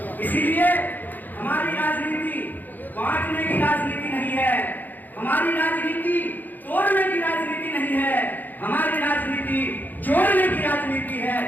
इसीलिए हमारी राजनीति बांटने की राजनीति नहीं है, हमारी राजनीति तोड़ने की राजनीति नहीं है, हमारी राजनीति जोड़ने की राजनीति है,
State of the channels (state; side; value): late; right; 0.085 ms